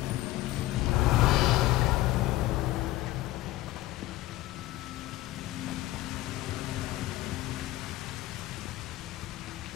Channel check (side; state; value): right; quieter; 16.9 dB